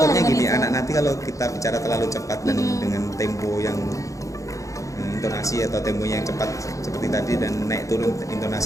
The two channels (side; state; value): right; late; 0.16 ms